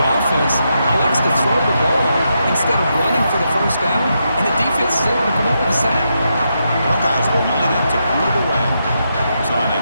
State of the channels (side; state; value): both; inverted; correlation -0.83